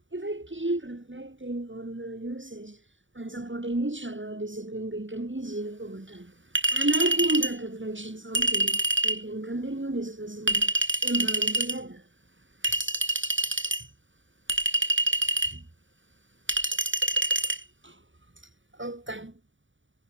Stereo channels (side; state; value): left; late; 0.56 ms